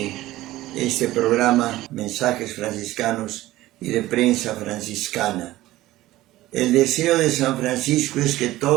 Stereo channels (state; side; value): quieter; left; 16.5 dB